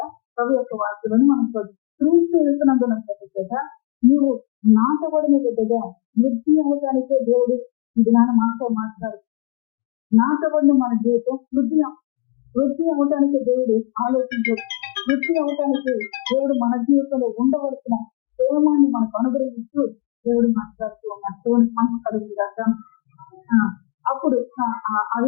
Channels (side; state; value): right; quieter; 21.5 dB